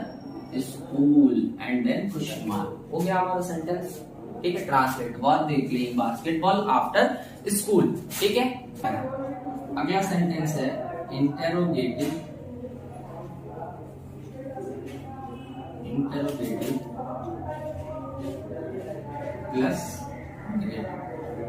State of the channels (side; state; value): both; identical; correlation 1.00